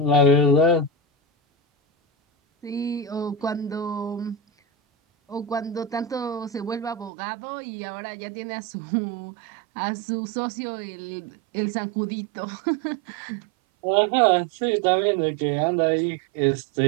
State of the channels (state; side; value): drops out; left; at 7.1 s